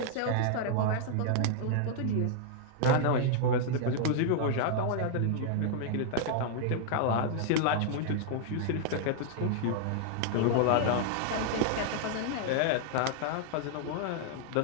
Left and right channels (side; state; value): both; different; correlation -0.01